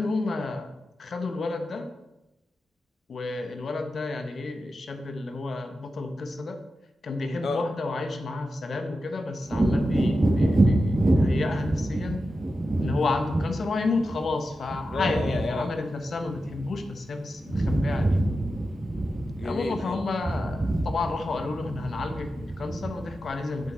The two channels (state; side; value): normal; both; correlation 0.91